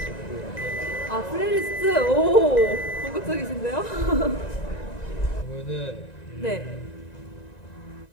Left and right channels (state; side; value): late; right; 1.9 ms